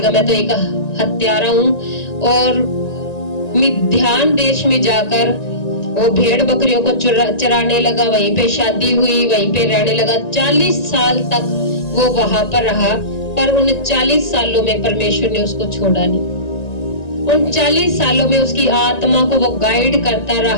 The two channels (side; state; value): right; late; 1.9 ms